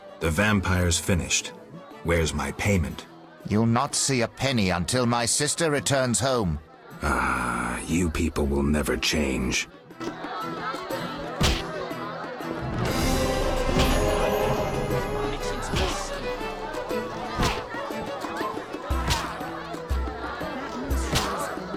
The vampire's finished. Where's my payment? You'll not see a penny until my sister returns home. Ah, you people will never change.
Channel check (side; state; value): both; identical; correlation 1.00